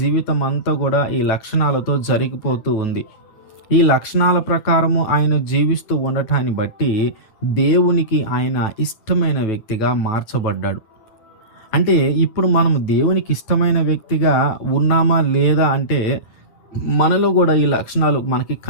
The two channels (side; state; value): right; late; 9.2 ms